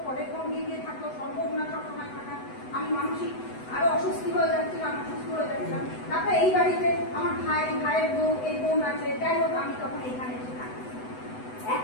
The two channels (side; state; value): right; late; 8.0 ms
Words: পরে বোন গিয়ে থাকতো, সম্ভব না সবসময় থাকা, আমি মানসিক আরো অসুস্থ হয়ে যাচ্ছিলাম, অসুস্থ হয়ে যাচ্ছিলাম। তারপরে এই বাড়িতে আমার ভাইয়ের বউ, এই বোন আছে, যাই হোক আমি তখন এখানে এসে থাকি।